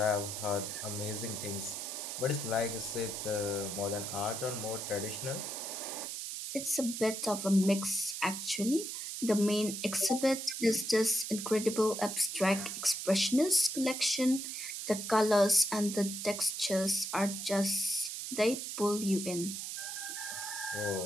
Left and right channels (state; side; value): noise; right; hiss, 6 dB below the sound